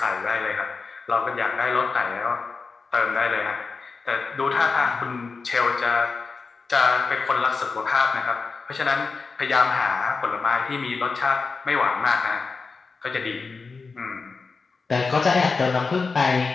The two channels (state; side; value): quieter; right; 4.5 dB